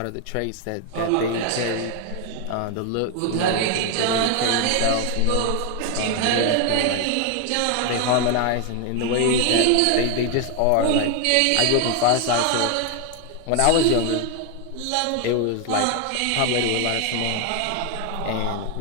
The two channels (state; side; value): different; both; correlation 0.01